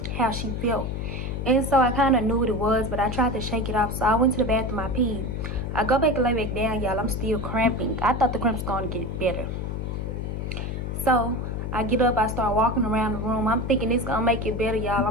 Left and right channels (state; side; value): noise; left; hum, 4 dB below the sound